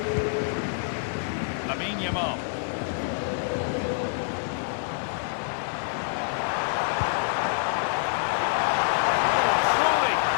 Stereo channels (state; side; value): silent; right; digital silence